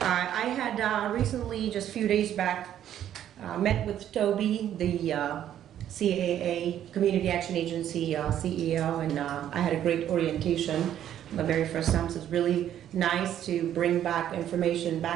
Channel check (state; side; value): quieter; left; 10.8 dB